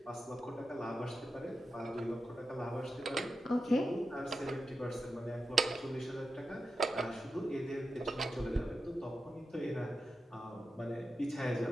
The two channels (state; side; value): normal; both; correlation 0.90